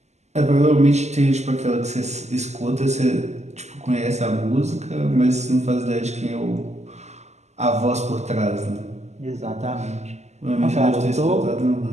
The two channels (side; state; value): left; late; 0.33 ms